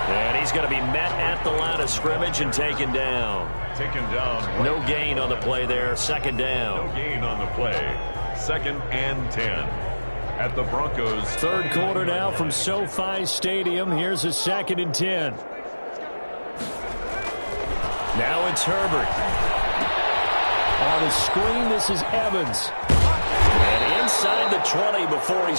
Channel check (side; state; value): both; inverted; correlation -1.00